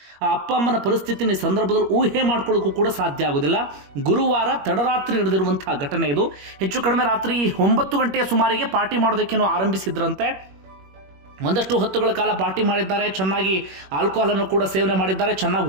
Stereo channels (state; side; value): late; left; 21 ms